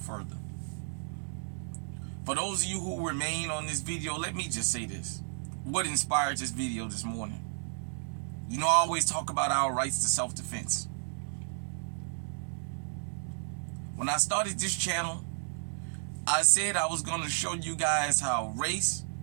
further. For those of you who remain on this video, let me just say this. What inspired this video this morning? You know, I always talk about our rights to self-defense. When I started this channel, I said I was going to show you guys how race,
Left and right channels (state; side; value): silent; left; digital silence